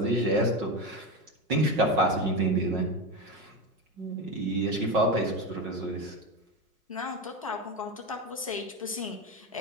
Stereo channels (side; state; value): both; normal; correlation 0.18